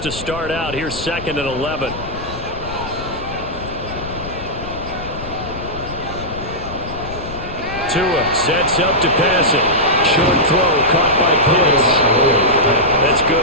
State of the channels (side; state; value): left; noise; rumble, 11 dB below the sound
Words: to start out, here's 2nd and 11. Tua sets up to pass it. Short throw caught by Pitts. That's